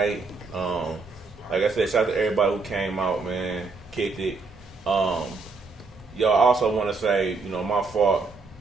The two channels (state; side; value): quieter; left; 4.1 dB